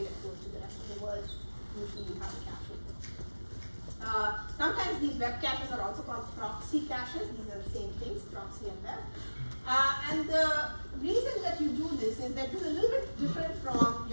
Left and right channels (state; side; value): inverted; both; correlation -1.00